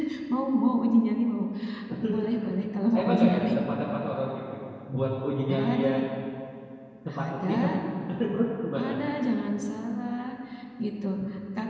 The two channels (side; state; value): both; identical; correlation 1.00